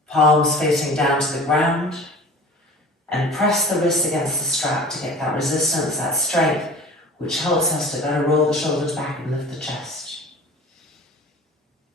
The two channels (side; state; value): both; normal; correlation 0.41